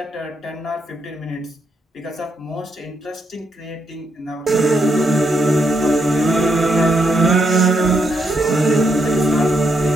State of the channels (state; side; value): normal; both; correlation 0.79